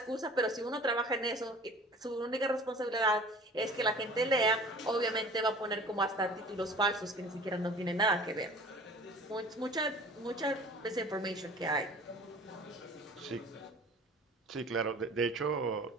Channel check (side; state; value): both; normal; correlation 0.44